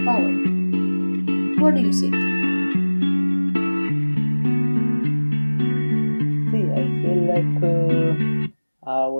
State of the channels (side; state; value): both; inverted; correlation -1.00